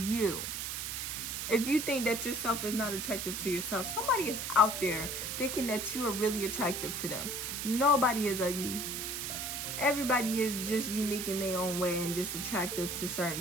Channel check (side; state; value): right; noise; hiss, 4 dB below the sound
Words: If you think that yourself is not attractive to yourself, somebody is out there thinking that you are really attractive to them. Nobody is ugly. Everybody is just unique in their own way and just attractive to certain